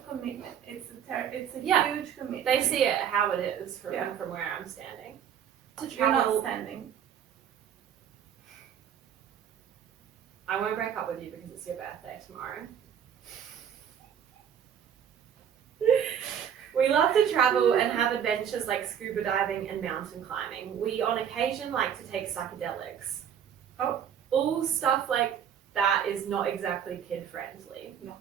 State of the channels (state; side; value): quieter; left; 8.7 dB